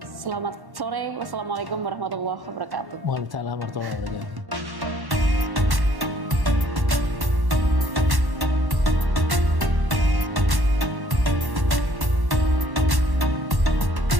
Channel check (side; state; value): left; late; 1.1 ms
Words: sore. Wassalamualaikum warahmatullahi wabarakatuh. Waalaikumsalam warahmatullahi wabarakatuh.